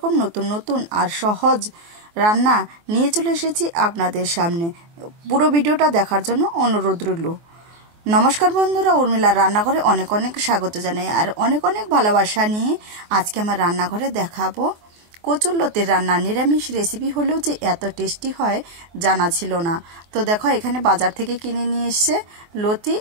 নতুন নতুন আর সহজ রান্না নিয়ে চলে এসেছি আপনাদের সামনে। পুরো ভিডিওটা দেখার জন্য অনুরোধ রইল। নমস্কার বন্ধুরা, উর্মিলার রান্নাঘরে অনেক অনেক স্বাগত জানাই আর অনেক অনেক ভালোবাসা নিয়ে আজকে আমার রান্নাঘরে দেখাবো কচুরলতির রান্না। নিরামিষ রেসিপি হলেও যে এত টেস্টি হয় জানা ছিল না। তো দেখো, এখানে বাজার থেকে কিনে নিয়ে এসছে লতি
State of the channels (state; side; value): late; left; 24 ms